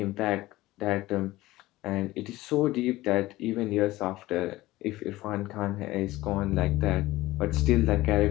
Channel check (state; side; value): quieter; right; 17.8 dB